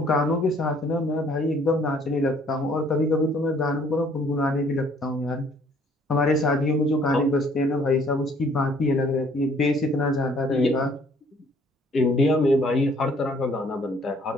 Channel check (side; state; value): both; normal; correlation 0.60